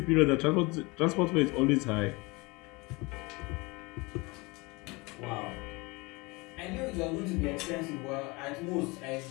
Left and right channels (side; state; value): right; quieter; 25.4 dB